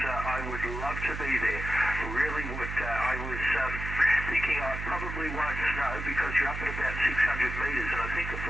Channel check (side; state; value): right; noise; hum, 6 dB below the sound